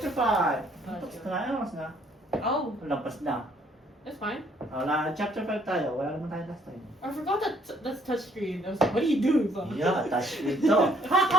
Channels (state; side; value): normal; both; correlation 0.64